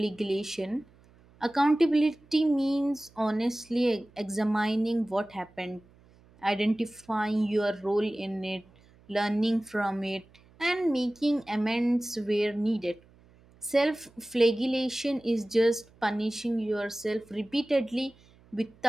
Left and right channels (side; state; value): right; noise; hum, 28 dB below the sound